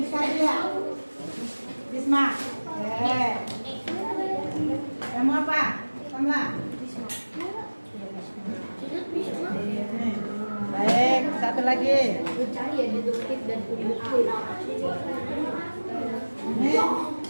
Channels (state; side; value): inverted; both; correlation -1.00